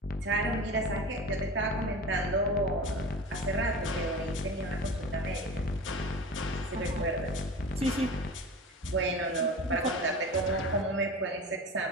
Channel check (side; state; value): both; normal; correlation 0.33